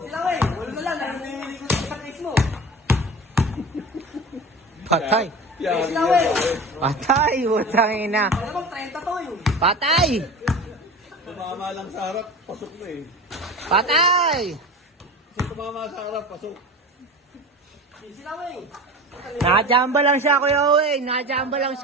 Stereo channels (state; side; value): normal; both; correlation 0.33